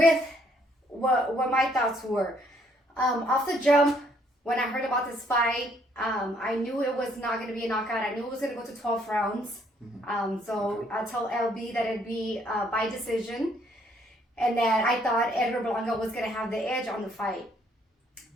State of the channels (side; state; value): both; normal; correlation 0.67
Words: what my thoughts were. Off the jump, when I heard about this fight, I knew it was not going to be a knockout. I knew it was going to go to 12 rounds. So I told LB that it'd be by decision, and that I thought Edgar Berlanga was going to have the edge on the fight.